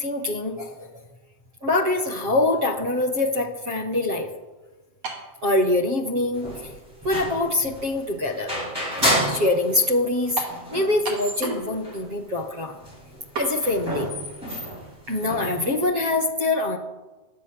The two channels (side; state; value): left; late; 7.4 ms